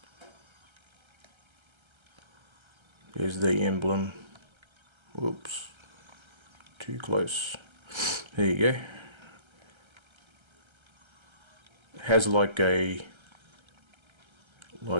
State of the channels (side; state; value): left; late; 1.3 ms